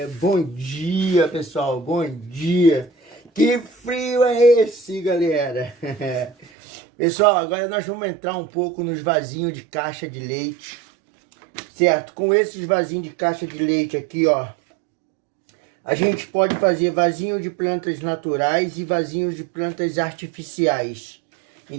bom dia, pessoal, bom dia. Que frio é esse, galera? Pessoal, agora nós vamos entrar um pouco nos vasinhos de caixa de leite, certo? Com esses vasinhos de caixa de leite aqui, ó, a gente pode fazer vasinho de plantas naturais e vasinhos de plantas artificiais.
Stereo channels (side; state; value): left; drops out; at 6.5 s